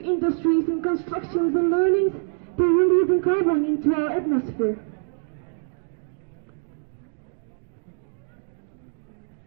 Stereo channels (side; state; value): left; silent; digital silence